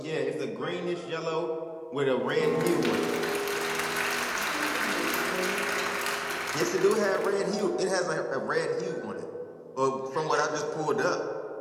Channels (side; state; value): both; identical; correlation 1.00